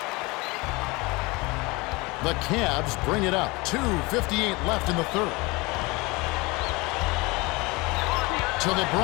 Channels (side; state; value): right; quieter; 24.7 dB